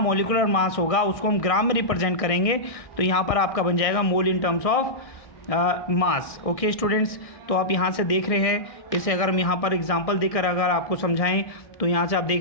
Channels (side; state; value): right; late; 1.6 ms